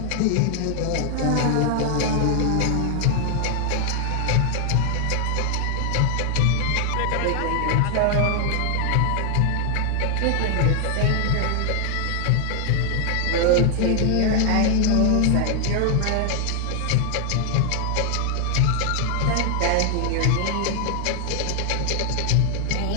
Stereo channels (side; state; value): both; different; correlation 0.00